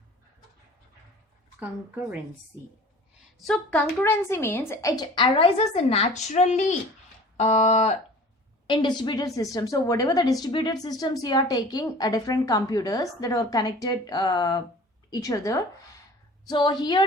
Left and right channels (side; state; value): both; normal; correlation 0.44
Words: So concurrency means it arises naturally in distributed systems. So whatever the distributed systems you are taking, different computers that are connected each other. So